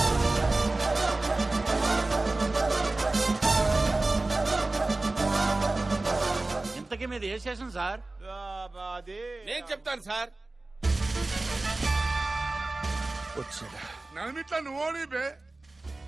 ఇంతకీ మీద ఏ స్టేషన్ సార్? నేను చెప్తాను సార్. నన్నిట్లా నువ్వు ఓడిపే.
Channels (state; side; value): quieter; left; 3.0 dB